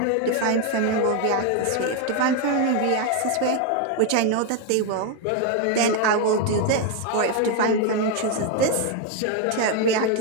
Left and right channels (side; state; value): both; different; correlation 0.01